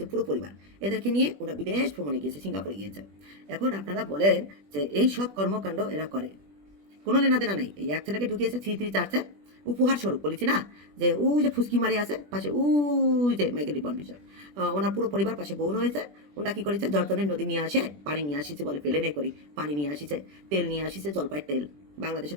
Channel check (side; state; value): left; late; 20 ms